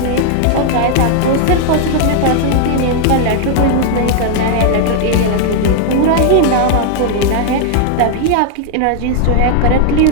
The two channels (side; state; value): both; different; correlation 0.00